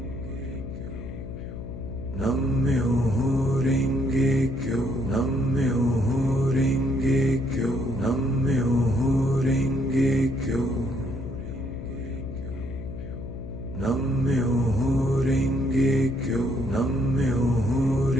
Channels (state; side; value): noise; left; hum, 10 dB below the sound